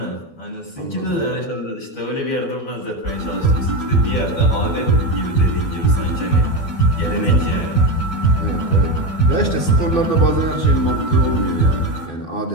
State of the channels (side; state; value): right; late; 12 ms